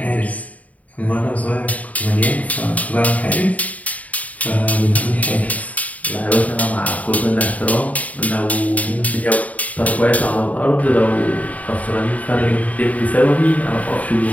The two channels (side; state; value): right; late; 0.071 ms